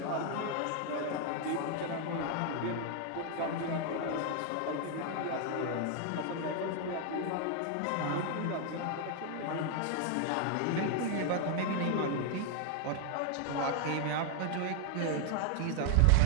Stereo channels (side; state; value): both; different; correlation 0.00